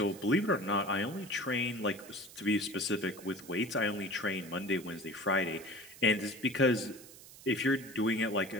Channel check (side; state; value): right; noise; hiss, 18 dB below the sound